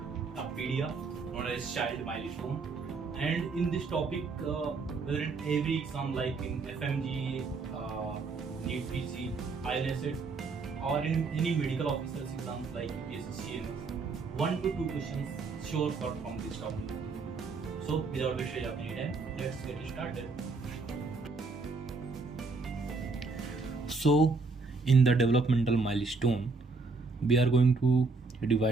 of PDF known as child milestone. And in this topic, whether in every exam like in FMG, NEET PC, ILSET, or in any medical officers exams like UPSC, CMS, 1 to 2 questions sure cut from this topic. So, without wasting any time, let's get started. So, in the developmental milestone, we are going to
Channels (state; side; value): quieter; left; 4.1 dB